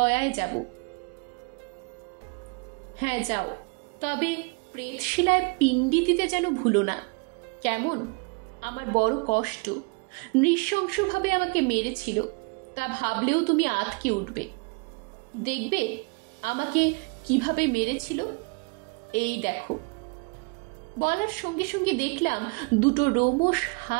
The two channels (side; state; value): left; quieter; 31.8 dB